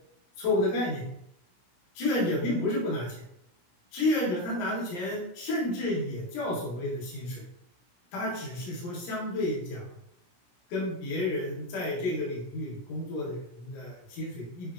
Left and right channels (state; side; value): late; right; 17 ms